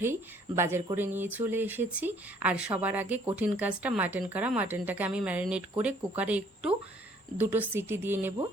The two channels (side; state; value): both; normal; correlation 0.61